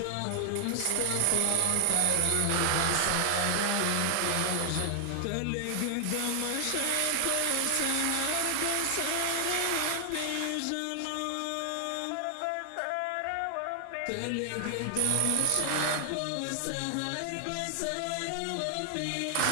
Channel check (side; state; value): both; different; correlation 0.00